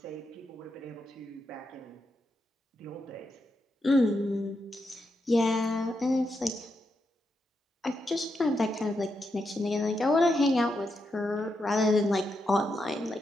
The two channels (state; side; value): normal; both; correlation 0.84